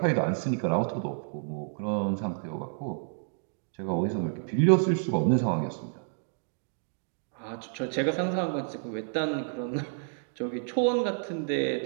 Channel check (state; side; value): silent; left; digital silence